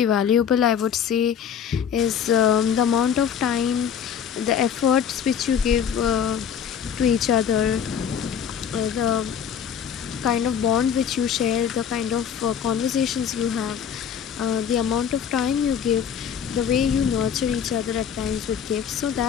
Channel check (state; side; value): quieter; right; 8.1 dB